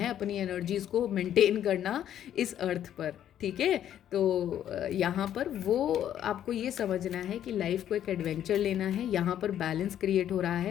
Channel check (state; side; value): quieter; right; 10.7 dB